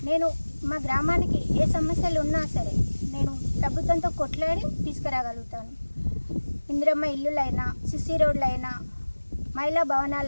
నేను మా గ్రామానికి ఏ సమస్యలు ఉన్నా సరే నేను ప్రభుత్వంతో కొట్లాడి తీసుకురాగలుగుతాను. ఇందిరమ్మ ఇల్లులైనా, సిసి రోడ్లైనా, మహిళా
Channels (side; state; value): both; inverted; correlation -1.00